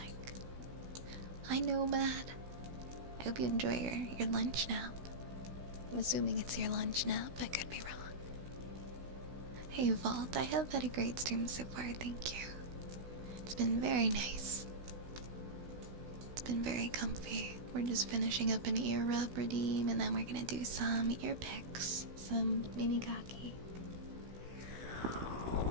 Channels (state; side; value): late; left; 16 ms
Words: Hi Nomad. I hope you enjoy your lunch nap. I'm assuming it's your lunch nap. I could be wrong. Hey Vault, I have had a great stream so far, thank you. It's been very nice. It's been very comfy. We're just finishing up an ear rub redeem, and then we're gonna do some ear picks, some mini kaki.